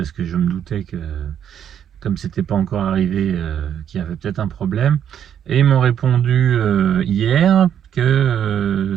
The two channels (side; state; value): left; quieter; 9.3 dB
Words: que je me doutais que comme c'était pas encore arrivé, qu'il y avait peut-être un problème. Et ils m'ont répondu hier